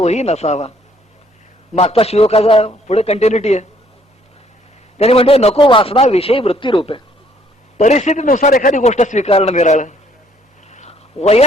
नसावा. मागचा श्लोकाचा पुढे कंटिन्युटी आहे. त्याने म्हणते नको वासना विषयी वृत्ती रूपे. परिस्थितीनुसार एखादी गोष्ट स्वीकारणं निराळं,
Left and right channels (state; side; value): normal; both; correlation 0.64